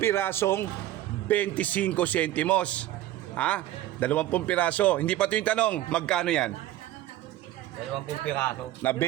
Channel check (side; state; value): left; quieter; 14.2 dB